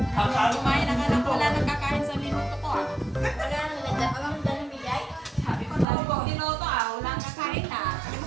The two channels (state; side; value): drops out; left; at 5.9 s